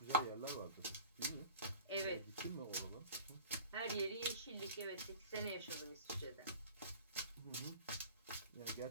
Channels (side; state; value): both; inverted; correlation -0.41